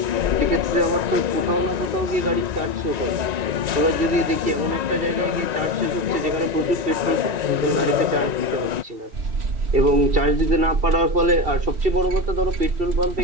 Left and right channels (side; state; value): left; late; 1.9 ms